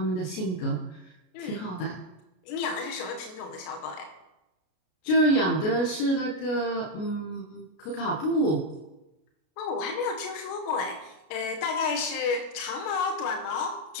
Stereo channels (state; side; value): late; right; 33 ms